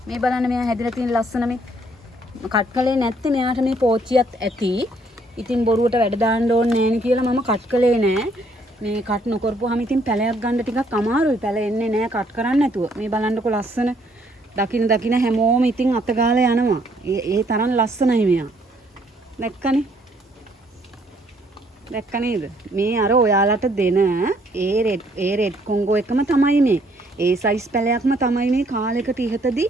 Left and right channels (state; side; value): normal; both; correlation 0.66